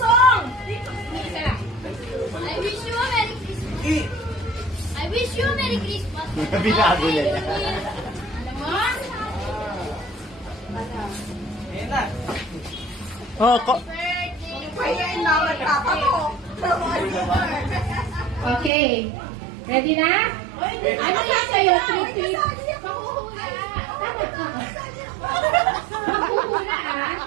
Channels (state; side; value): drops out; left; at 18.7 s